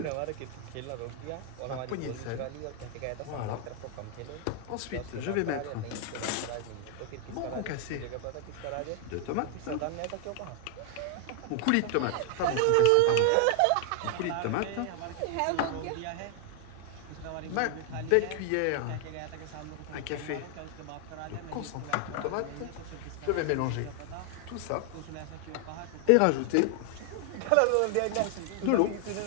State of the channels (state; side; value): different; both; correlation 0.00